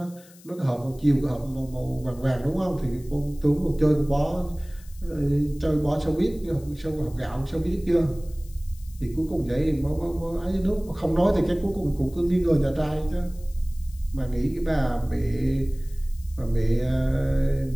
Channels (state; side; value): noise; left; hiss, 24 dB below the sound